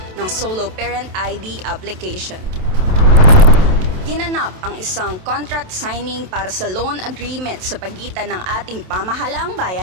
ng solo parent ID application. Ginanap ang isang contract signing para sa loan agreement sa pagitan ng ating pamahalaang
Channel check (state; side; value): late; left; 27 ms